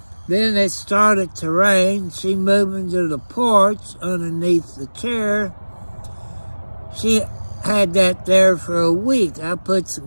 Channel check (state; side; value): inverted; both; correlation -1.00